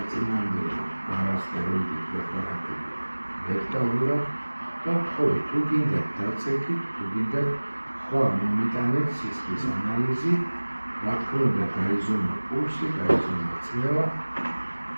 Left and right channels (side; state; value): both; inverted; correlation -1.00